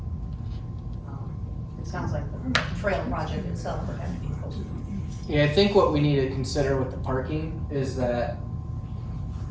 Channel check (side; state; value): both; identical; correlation 1.00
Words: it sounds like the trail project itself would have to be closer. Yeah, I think what we need to consider with the parking is that